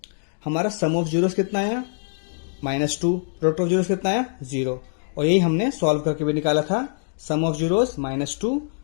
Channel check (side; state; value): right; silent; digital silence